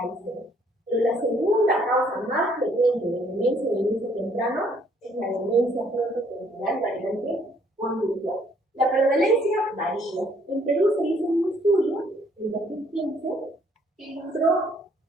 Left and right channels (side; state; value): both; normal; correlation 0.64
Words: de Alzheimer. Pero la segunda causa más frecuente de demencia de inicio temprano es la demencia frontotemporal variante conductual. La prevalencia varía. En Perú se hizo un estudio en 2015 que encontró